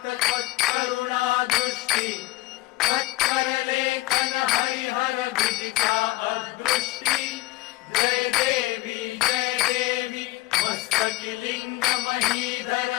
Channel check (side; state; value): right; quieter; 19.3 dB